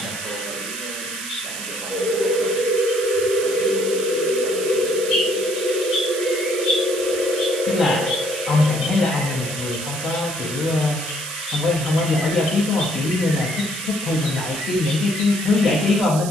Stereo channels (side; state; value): right; noise; hiss, 8 dB below the sound